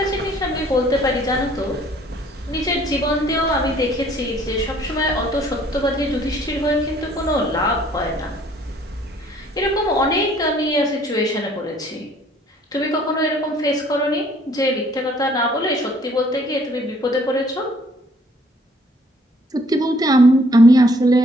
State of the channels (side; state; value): both; normal; correlation 0.60